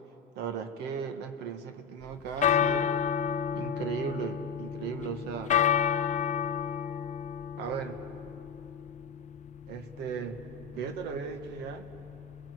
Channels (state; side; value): quieter; right; 4.7 dB